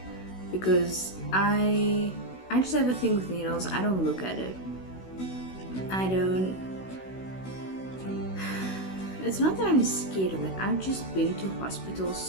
because I just have a thing with needles. I don't look at it. It's not that I'm scared of it. I've just been to hospital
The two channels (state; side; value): late; right; 16 ms